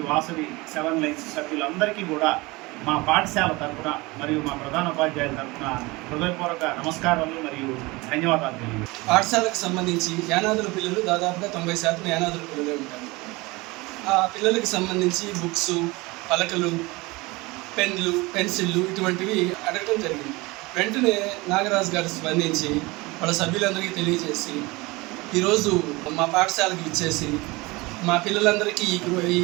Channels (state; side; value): quieter; left; 23.2 dB